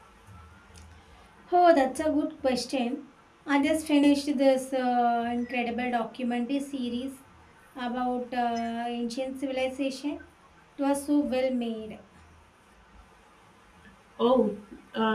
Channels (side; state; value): both; identical; correlation 1.00